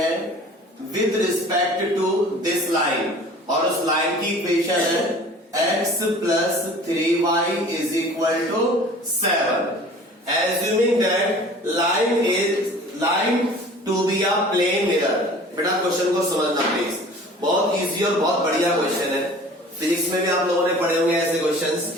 with respect to this line, और उस लाइन की इक्वेशन है x plus 3y is equal to 7, assuming that line to be a plane mirror. बेटा क्वेश्चन को समझना प्लीज, बहुत इजी और बहुत बढ़िया क्वेश्चन है। फिजिक्स में भी आप लोगों ने पढ़े होंगे ऐसे क्वेश्चंस,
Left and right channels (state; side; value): normal; both; correlation 0.45